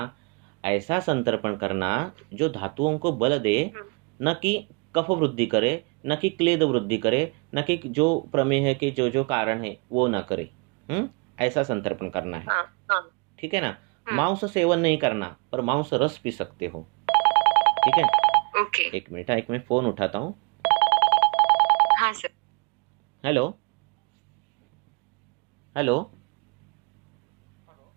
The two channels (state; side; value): quieter; left; 32.6 dB